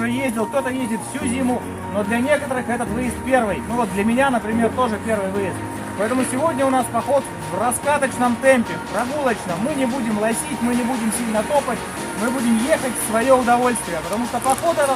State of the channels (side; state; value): both; identical; correlation 1.00